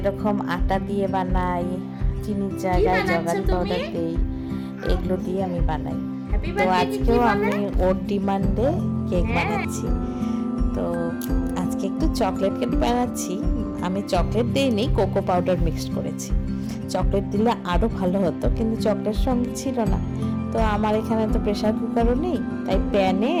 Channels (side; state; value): both; identical; correlation 1.00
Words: আটা দিয়ে বানাই, চিনির জায়গায় জগারি পাউডার দিই, এগুলো দিয়ে আমি বানাই। তো আজকেও আমি ওর ডিমান্ডে কেক বানাচ্ছি। তো আজকে একটু চকলেট কেক বানাচ্ছি। আমি চকলেট দিইনি, কোকো পাউডার মিক্সড করেছি। চকলেট দিলে আরও ভালো হতো, কিন্তু চকলেট সঙ্গে ছিল না। তো আমার এখানে তো প্রেশার কুকারও নেই, তাই প্যানে